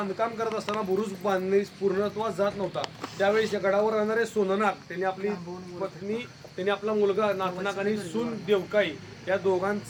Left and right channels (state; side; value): identical; both; correlation 1.00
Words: करत असताना बुरुज बांधणे पूर्णत्वास जात नव्हता. त्यावेळेस या गडावर राहणारे सोननाग त्यांनी आपली पत्नी, त्यांनी आपला मुलगा नागनाग आणि सून देवकाई या